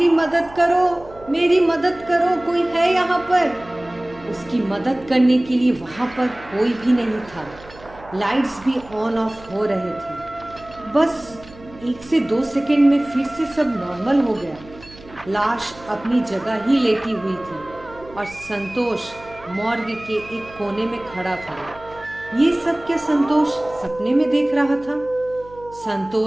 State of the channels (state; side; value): noise; right; hum, 21 dB below the sound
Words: मदद करो, मेरी मदद करो, कोई है यहाँ पर। उसकी मदद करने के लिए वहां पर कोई भी नहीं था। लाइट्स भी ऑन ऑफ हो रहे थे। बस 1 से 2 सेकंड में फिर से सब नॉर्मल हो गया। लाश अपनी जगह ही लेटी हुई थी और संतोष मॉर्ग के एक कोने में खड़ा था। ये सब क्या संतोष सपने में देख रहा था?